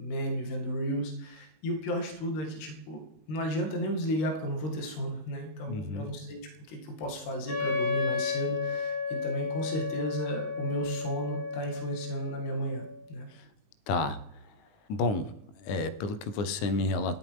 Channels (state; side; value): late; right; 19 ms